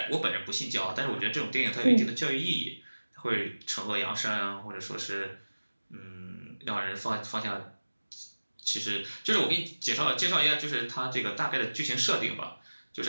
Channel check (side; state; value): both; inverted; correlation -1.00